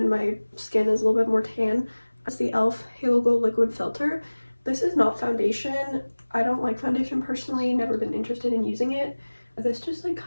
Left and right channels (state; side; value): inverted; both; correlation -1.00